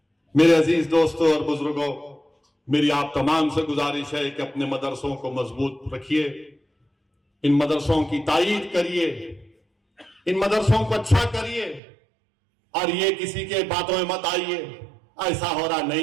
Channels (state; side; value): drops out; left; at 11.8 s